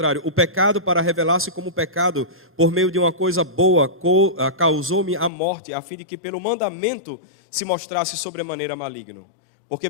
o pecado, para revelar-se como pecado, por meio de uma coisa boa, causou-me a morte, a fim de que pelo mandamento se mostrasse sobremaneira maligno. Porque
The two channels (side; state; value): right; drops out; at 5.3 s